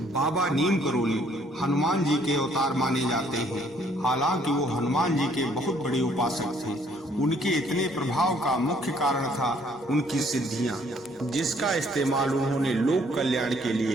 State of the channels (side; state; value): both; normal; correlation 0.63